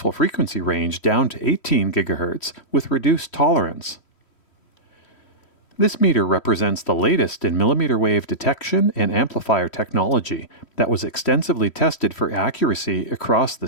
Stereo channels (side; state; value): right; late; 3.1 ms